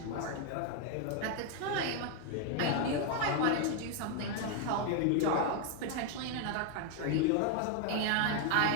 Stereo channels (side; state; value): both; different; correlation 0.00